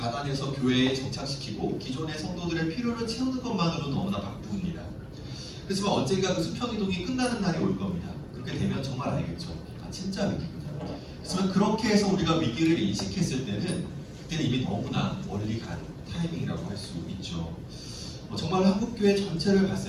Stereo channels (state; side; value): identical; both; correlation 1.00